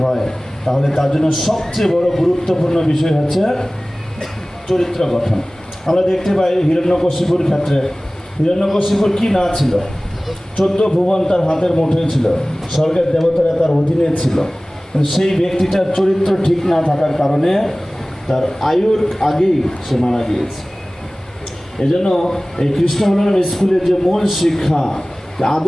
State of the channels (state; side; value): normal; both; correlation 0.98